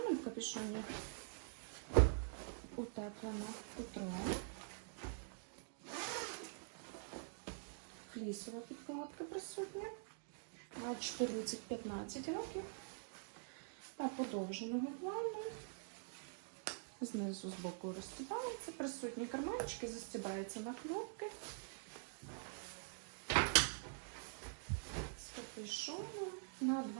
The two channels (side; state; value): left; silent; digital silence